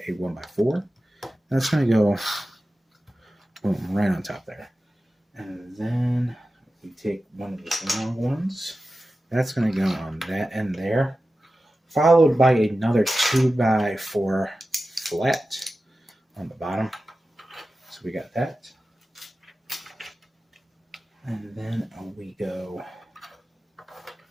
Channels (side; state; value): both; normal; correlation 0.94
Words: a 1x4. That's going to go boom, right on top there. And then we take one of the long ones. That's going to go on that end there. Followed by another 2x4 flat on the bottom. So we got that. And then we go,